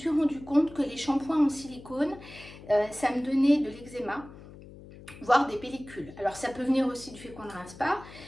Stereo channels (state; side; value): noise; left; hum, 18 dB below the sound